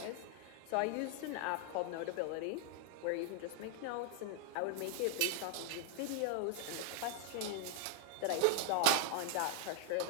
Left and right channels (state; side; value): different; both; correlation -0.01